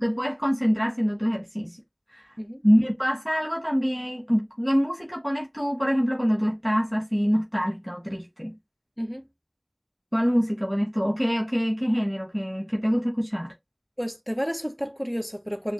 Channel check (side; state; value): both; identical; correlation 1.00